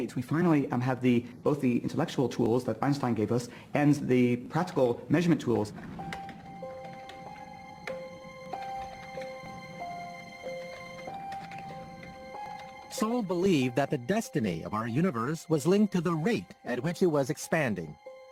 we finally have both the intellectual tools that Einstein gave us and the practical measurement tools. Saul believed that the destiny of our universe was linked to the rate at which it was expanding.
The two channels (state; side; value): identical; both; correlation 1.00